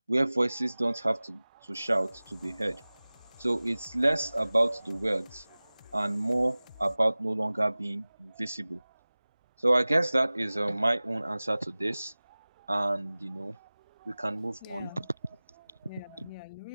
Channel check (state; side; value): inverted; both; correlation -0.99